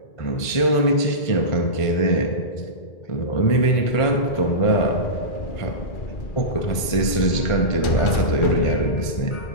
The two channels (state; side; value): late; right; 1.5 ms